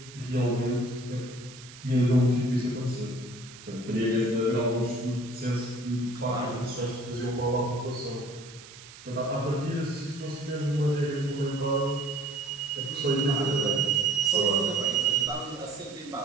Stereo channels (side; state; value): right; noise; hiss, 18 dB below the sound